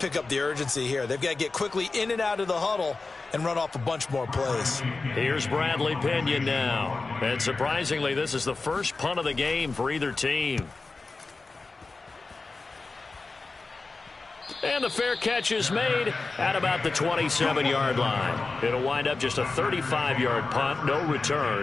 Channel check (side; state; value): right; quieter; 3.8 dB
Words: up the urgency here. They've got to get quickly in and out of the huddle and run off a bunch more plays. Here's Bradley Pinion now. And surprisingly, this is the first punt of the game for either team. And the fair catch is made at about the 27-yard line. It'll wind up just a 35-yard punt, no